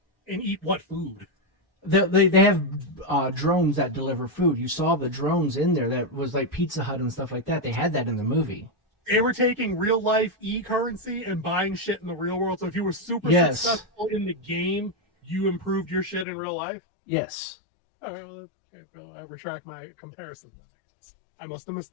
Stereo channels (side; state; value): right; drops out; at 16.2 s